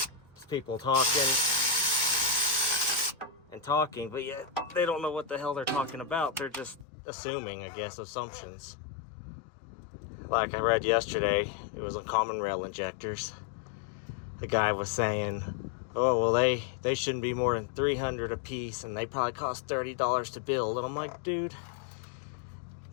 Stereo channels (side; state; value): right; drops out; at 6.9 s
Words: Just people talking and talking, but yet they don't know what the hell they're talking about. They're just assuming, I guess, assumptions. Like I read yesterday, it was on common rail injectors. The guy was saying, oh, well, they shouldn't be more than $300 a piece, and they probably cost $30 to build. And I'm like, dude,